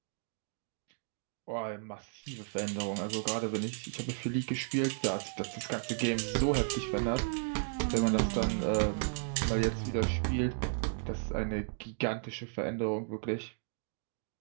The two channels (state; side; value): silent; left; digital silence